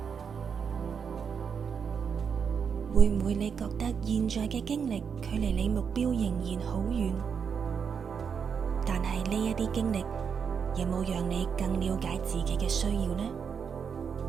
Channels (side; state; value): left; quieter; 6.6 dB